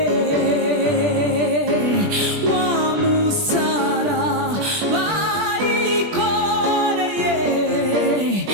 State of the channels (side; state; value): left; late; 20 ms